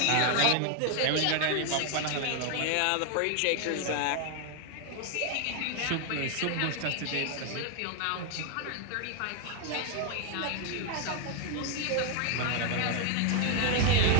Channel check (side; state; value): both; different; correlation 0.00